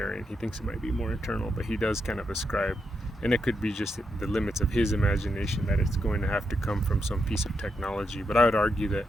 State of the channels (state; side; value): normal; both; correlation 0.83